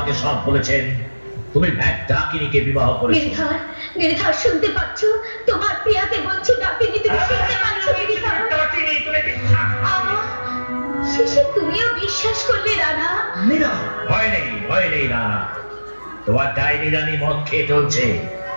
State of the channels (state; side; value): inverted; both; correlation -1.00